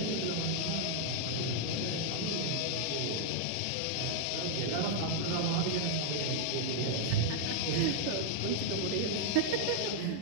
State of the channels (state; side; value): different; both; correlation 0.00